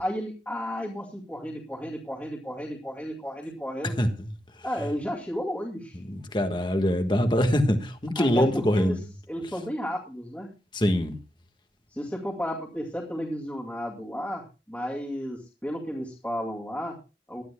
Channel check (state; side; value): normal; both; correlation 0.85